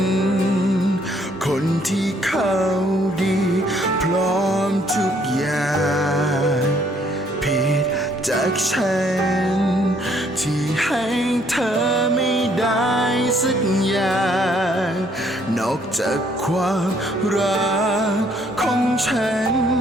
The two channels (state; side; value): normal; both; correlation 0.66